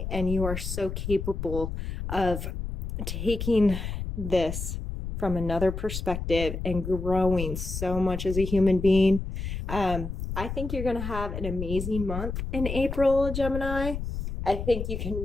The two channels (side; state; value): left; noise; rumble, 5 dB below the sound